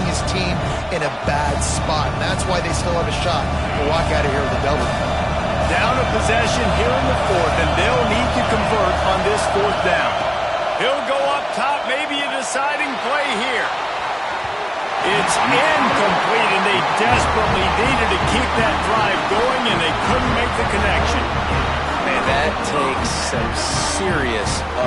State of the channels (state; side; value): identical; both; correlation 1.00